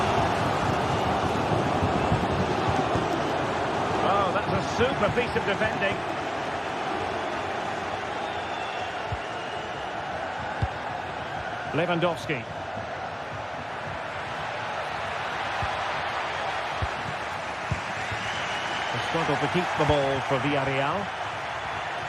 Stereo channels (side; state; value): both; identical; correlation 1.00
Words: Oh, that's a super piece of defending. Lewandowski. They struggle to keep the ball for Villarreal.